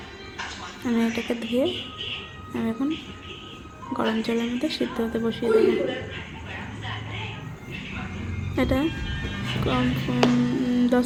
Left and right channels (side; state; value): both; identical; correlation 1.00